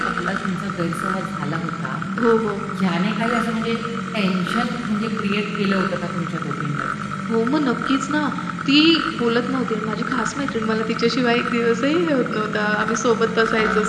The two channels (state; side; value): identical; both; correlation 1.00